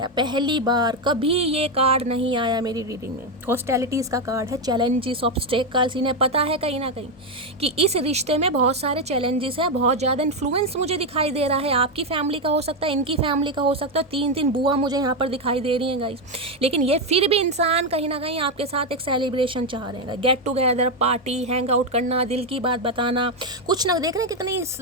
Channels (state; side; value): normal; both; correlation 0.06